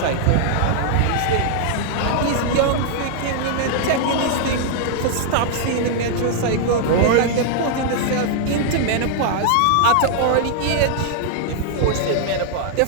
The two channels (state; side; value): different; both; correlation -0.01